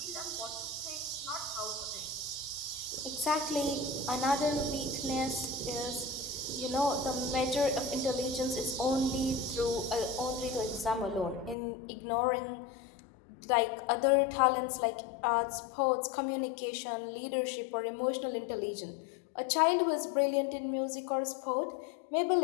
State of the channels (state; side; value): drops out; right; at 11.6 s